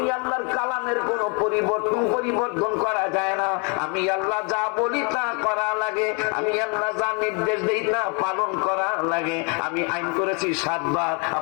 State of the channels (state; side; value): quieter; right; 34.4 dB